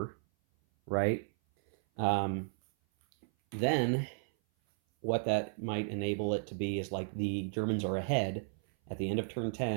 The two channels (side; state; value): left; silent; 55 dB below the other